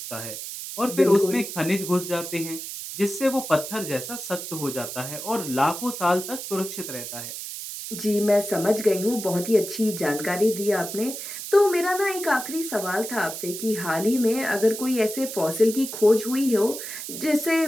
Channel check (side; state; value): right; noise; hiss, 8 dB below the sound